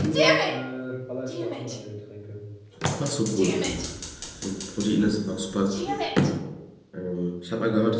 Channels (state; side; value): identical; both; correlation 1.00